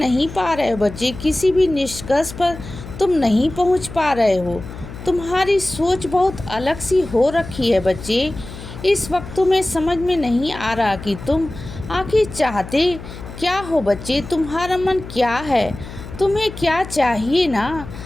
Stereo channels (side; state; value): left; noise; hum, 13 dB below the sound